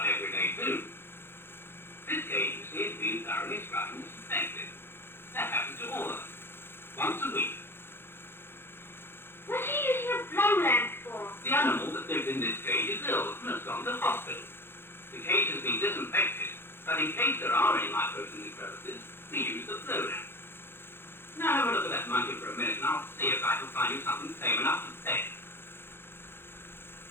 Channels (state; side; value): late; right; 0.11 ms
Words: every day too. This cage, you see, has been thoroughly scrubbed and disinfected. That happens to all of them. Once a week. What's he using a blow lamp for? The animal that lives in this cage is ill and has gone to hospital. The cage has been disinfected, but in case there are any microbes in the crevices, we use the blow lamp. Now have a look at that monkey for a minute and I'll see if I can find you something tame enough to pet.